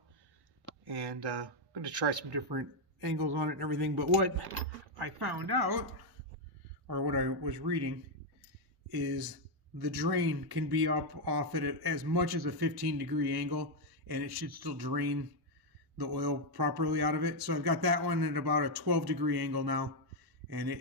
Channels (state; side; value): late; left; 1.1 ms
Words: and I'm going to try some different angles on it and everything. But what I found out, or what I was reading, is the drain can be up off at as much as a 15-degree angle, and it should still drain the oil properly out of it. So I've got that one at about a 12-degree angle now, and